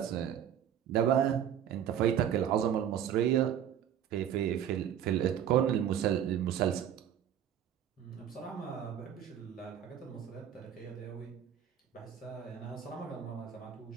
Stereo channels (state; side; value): quieter; left; 9.7 dB